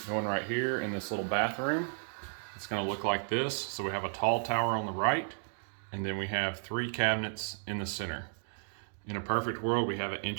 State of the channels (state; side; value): silent; left; digital silence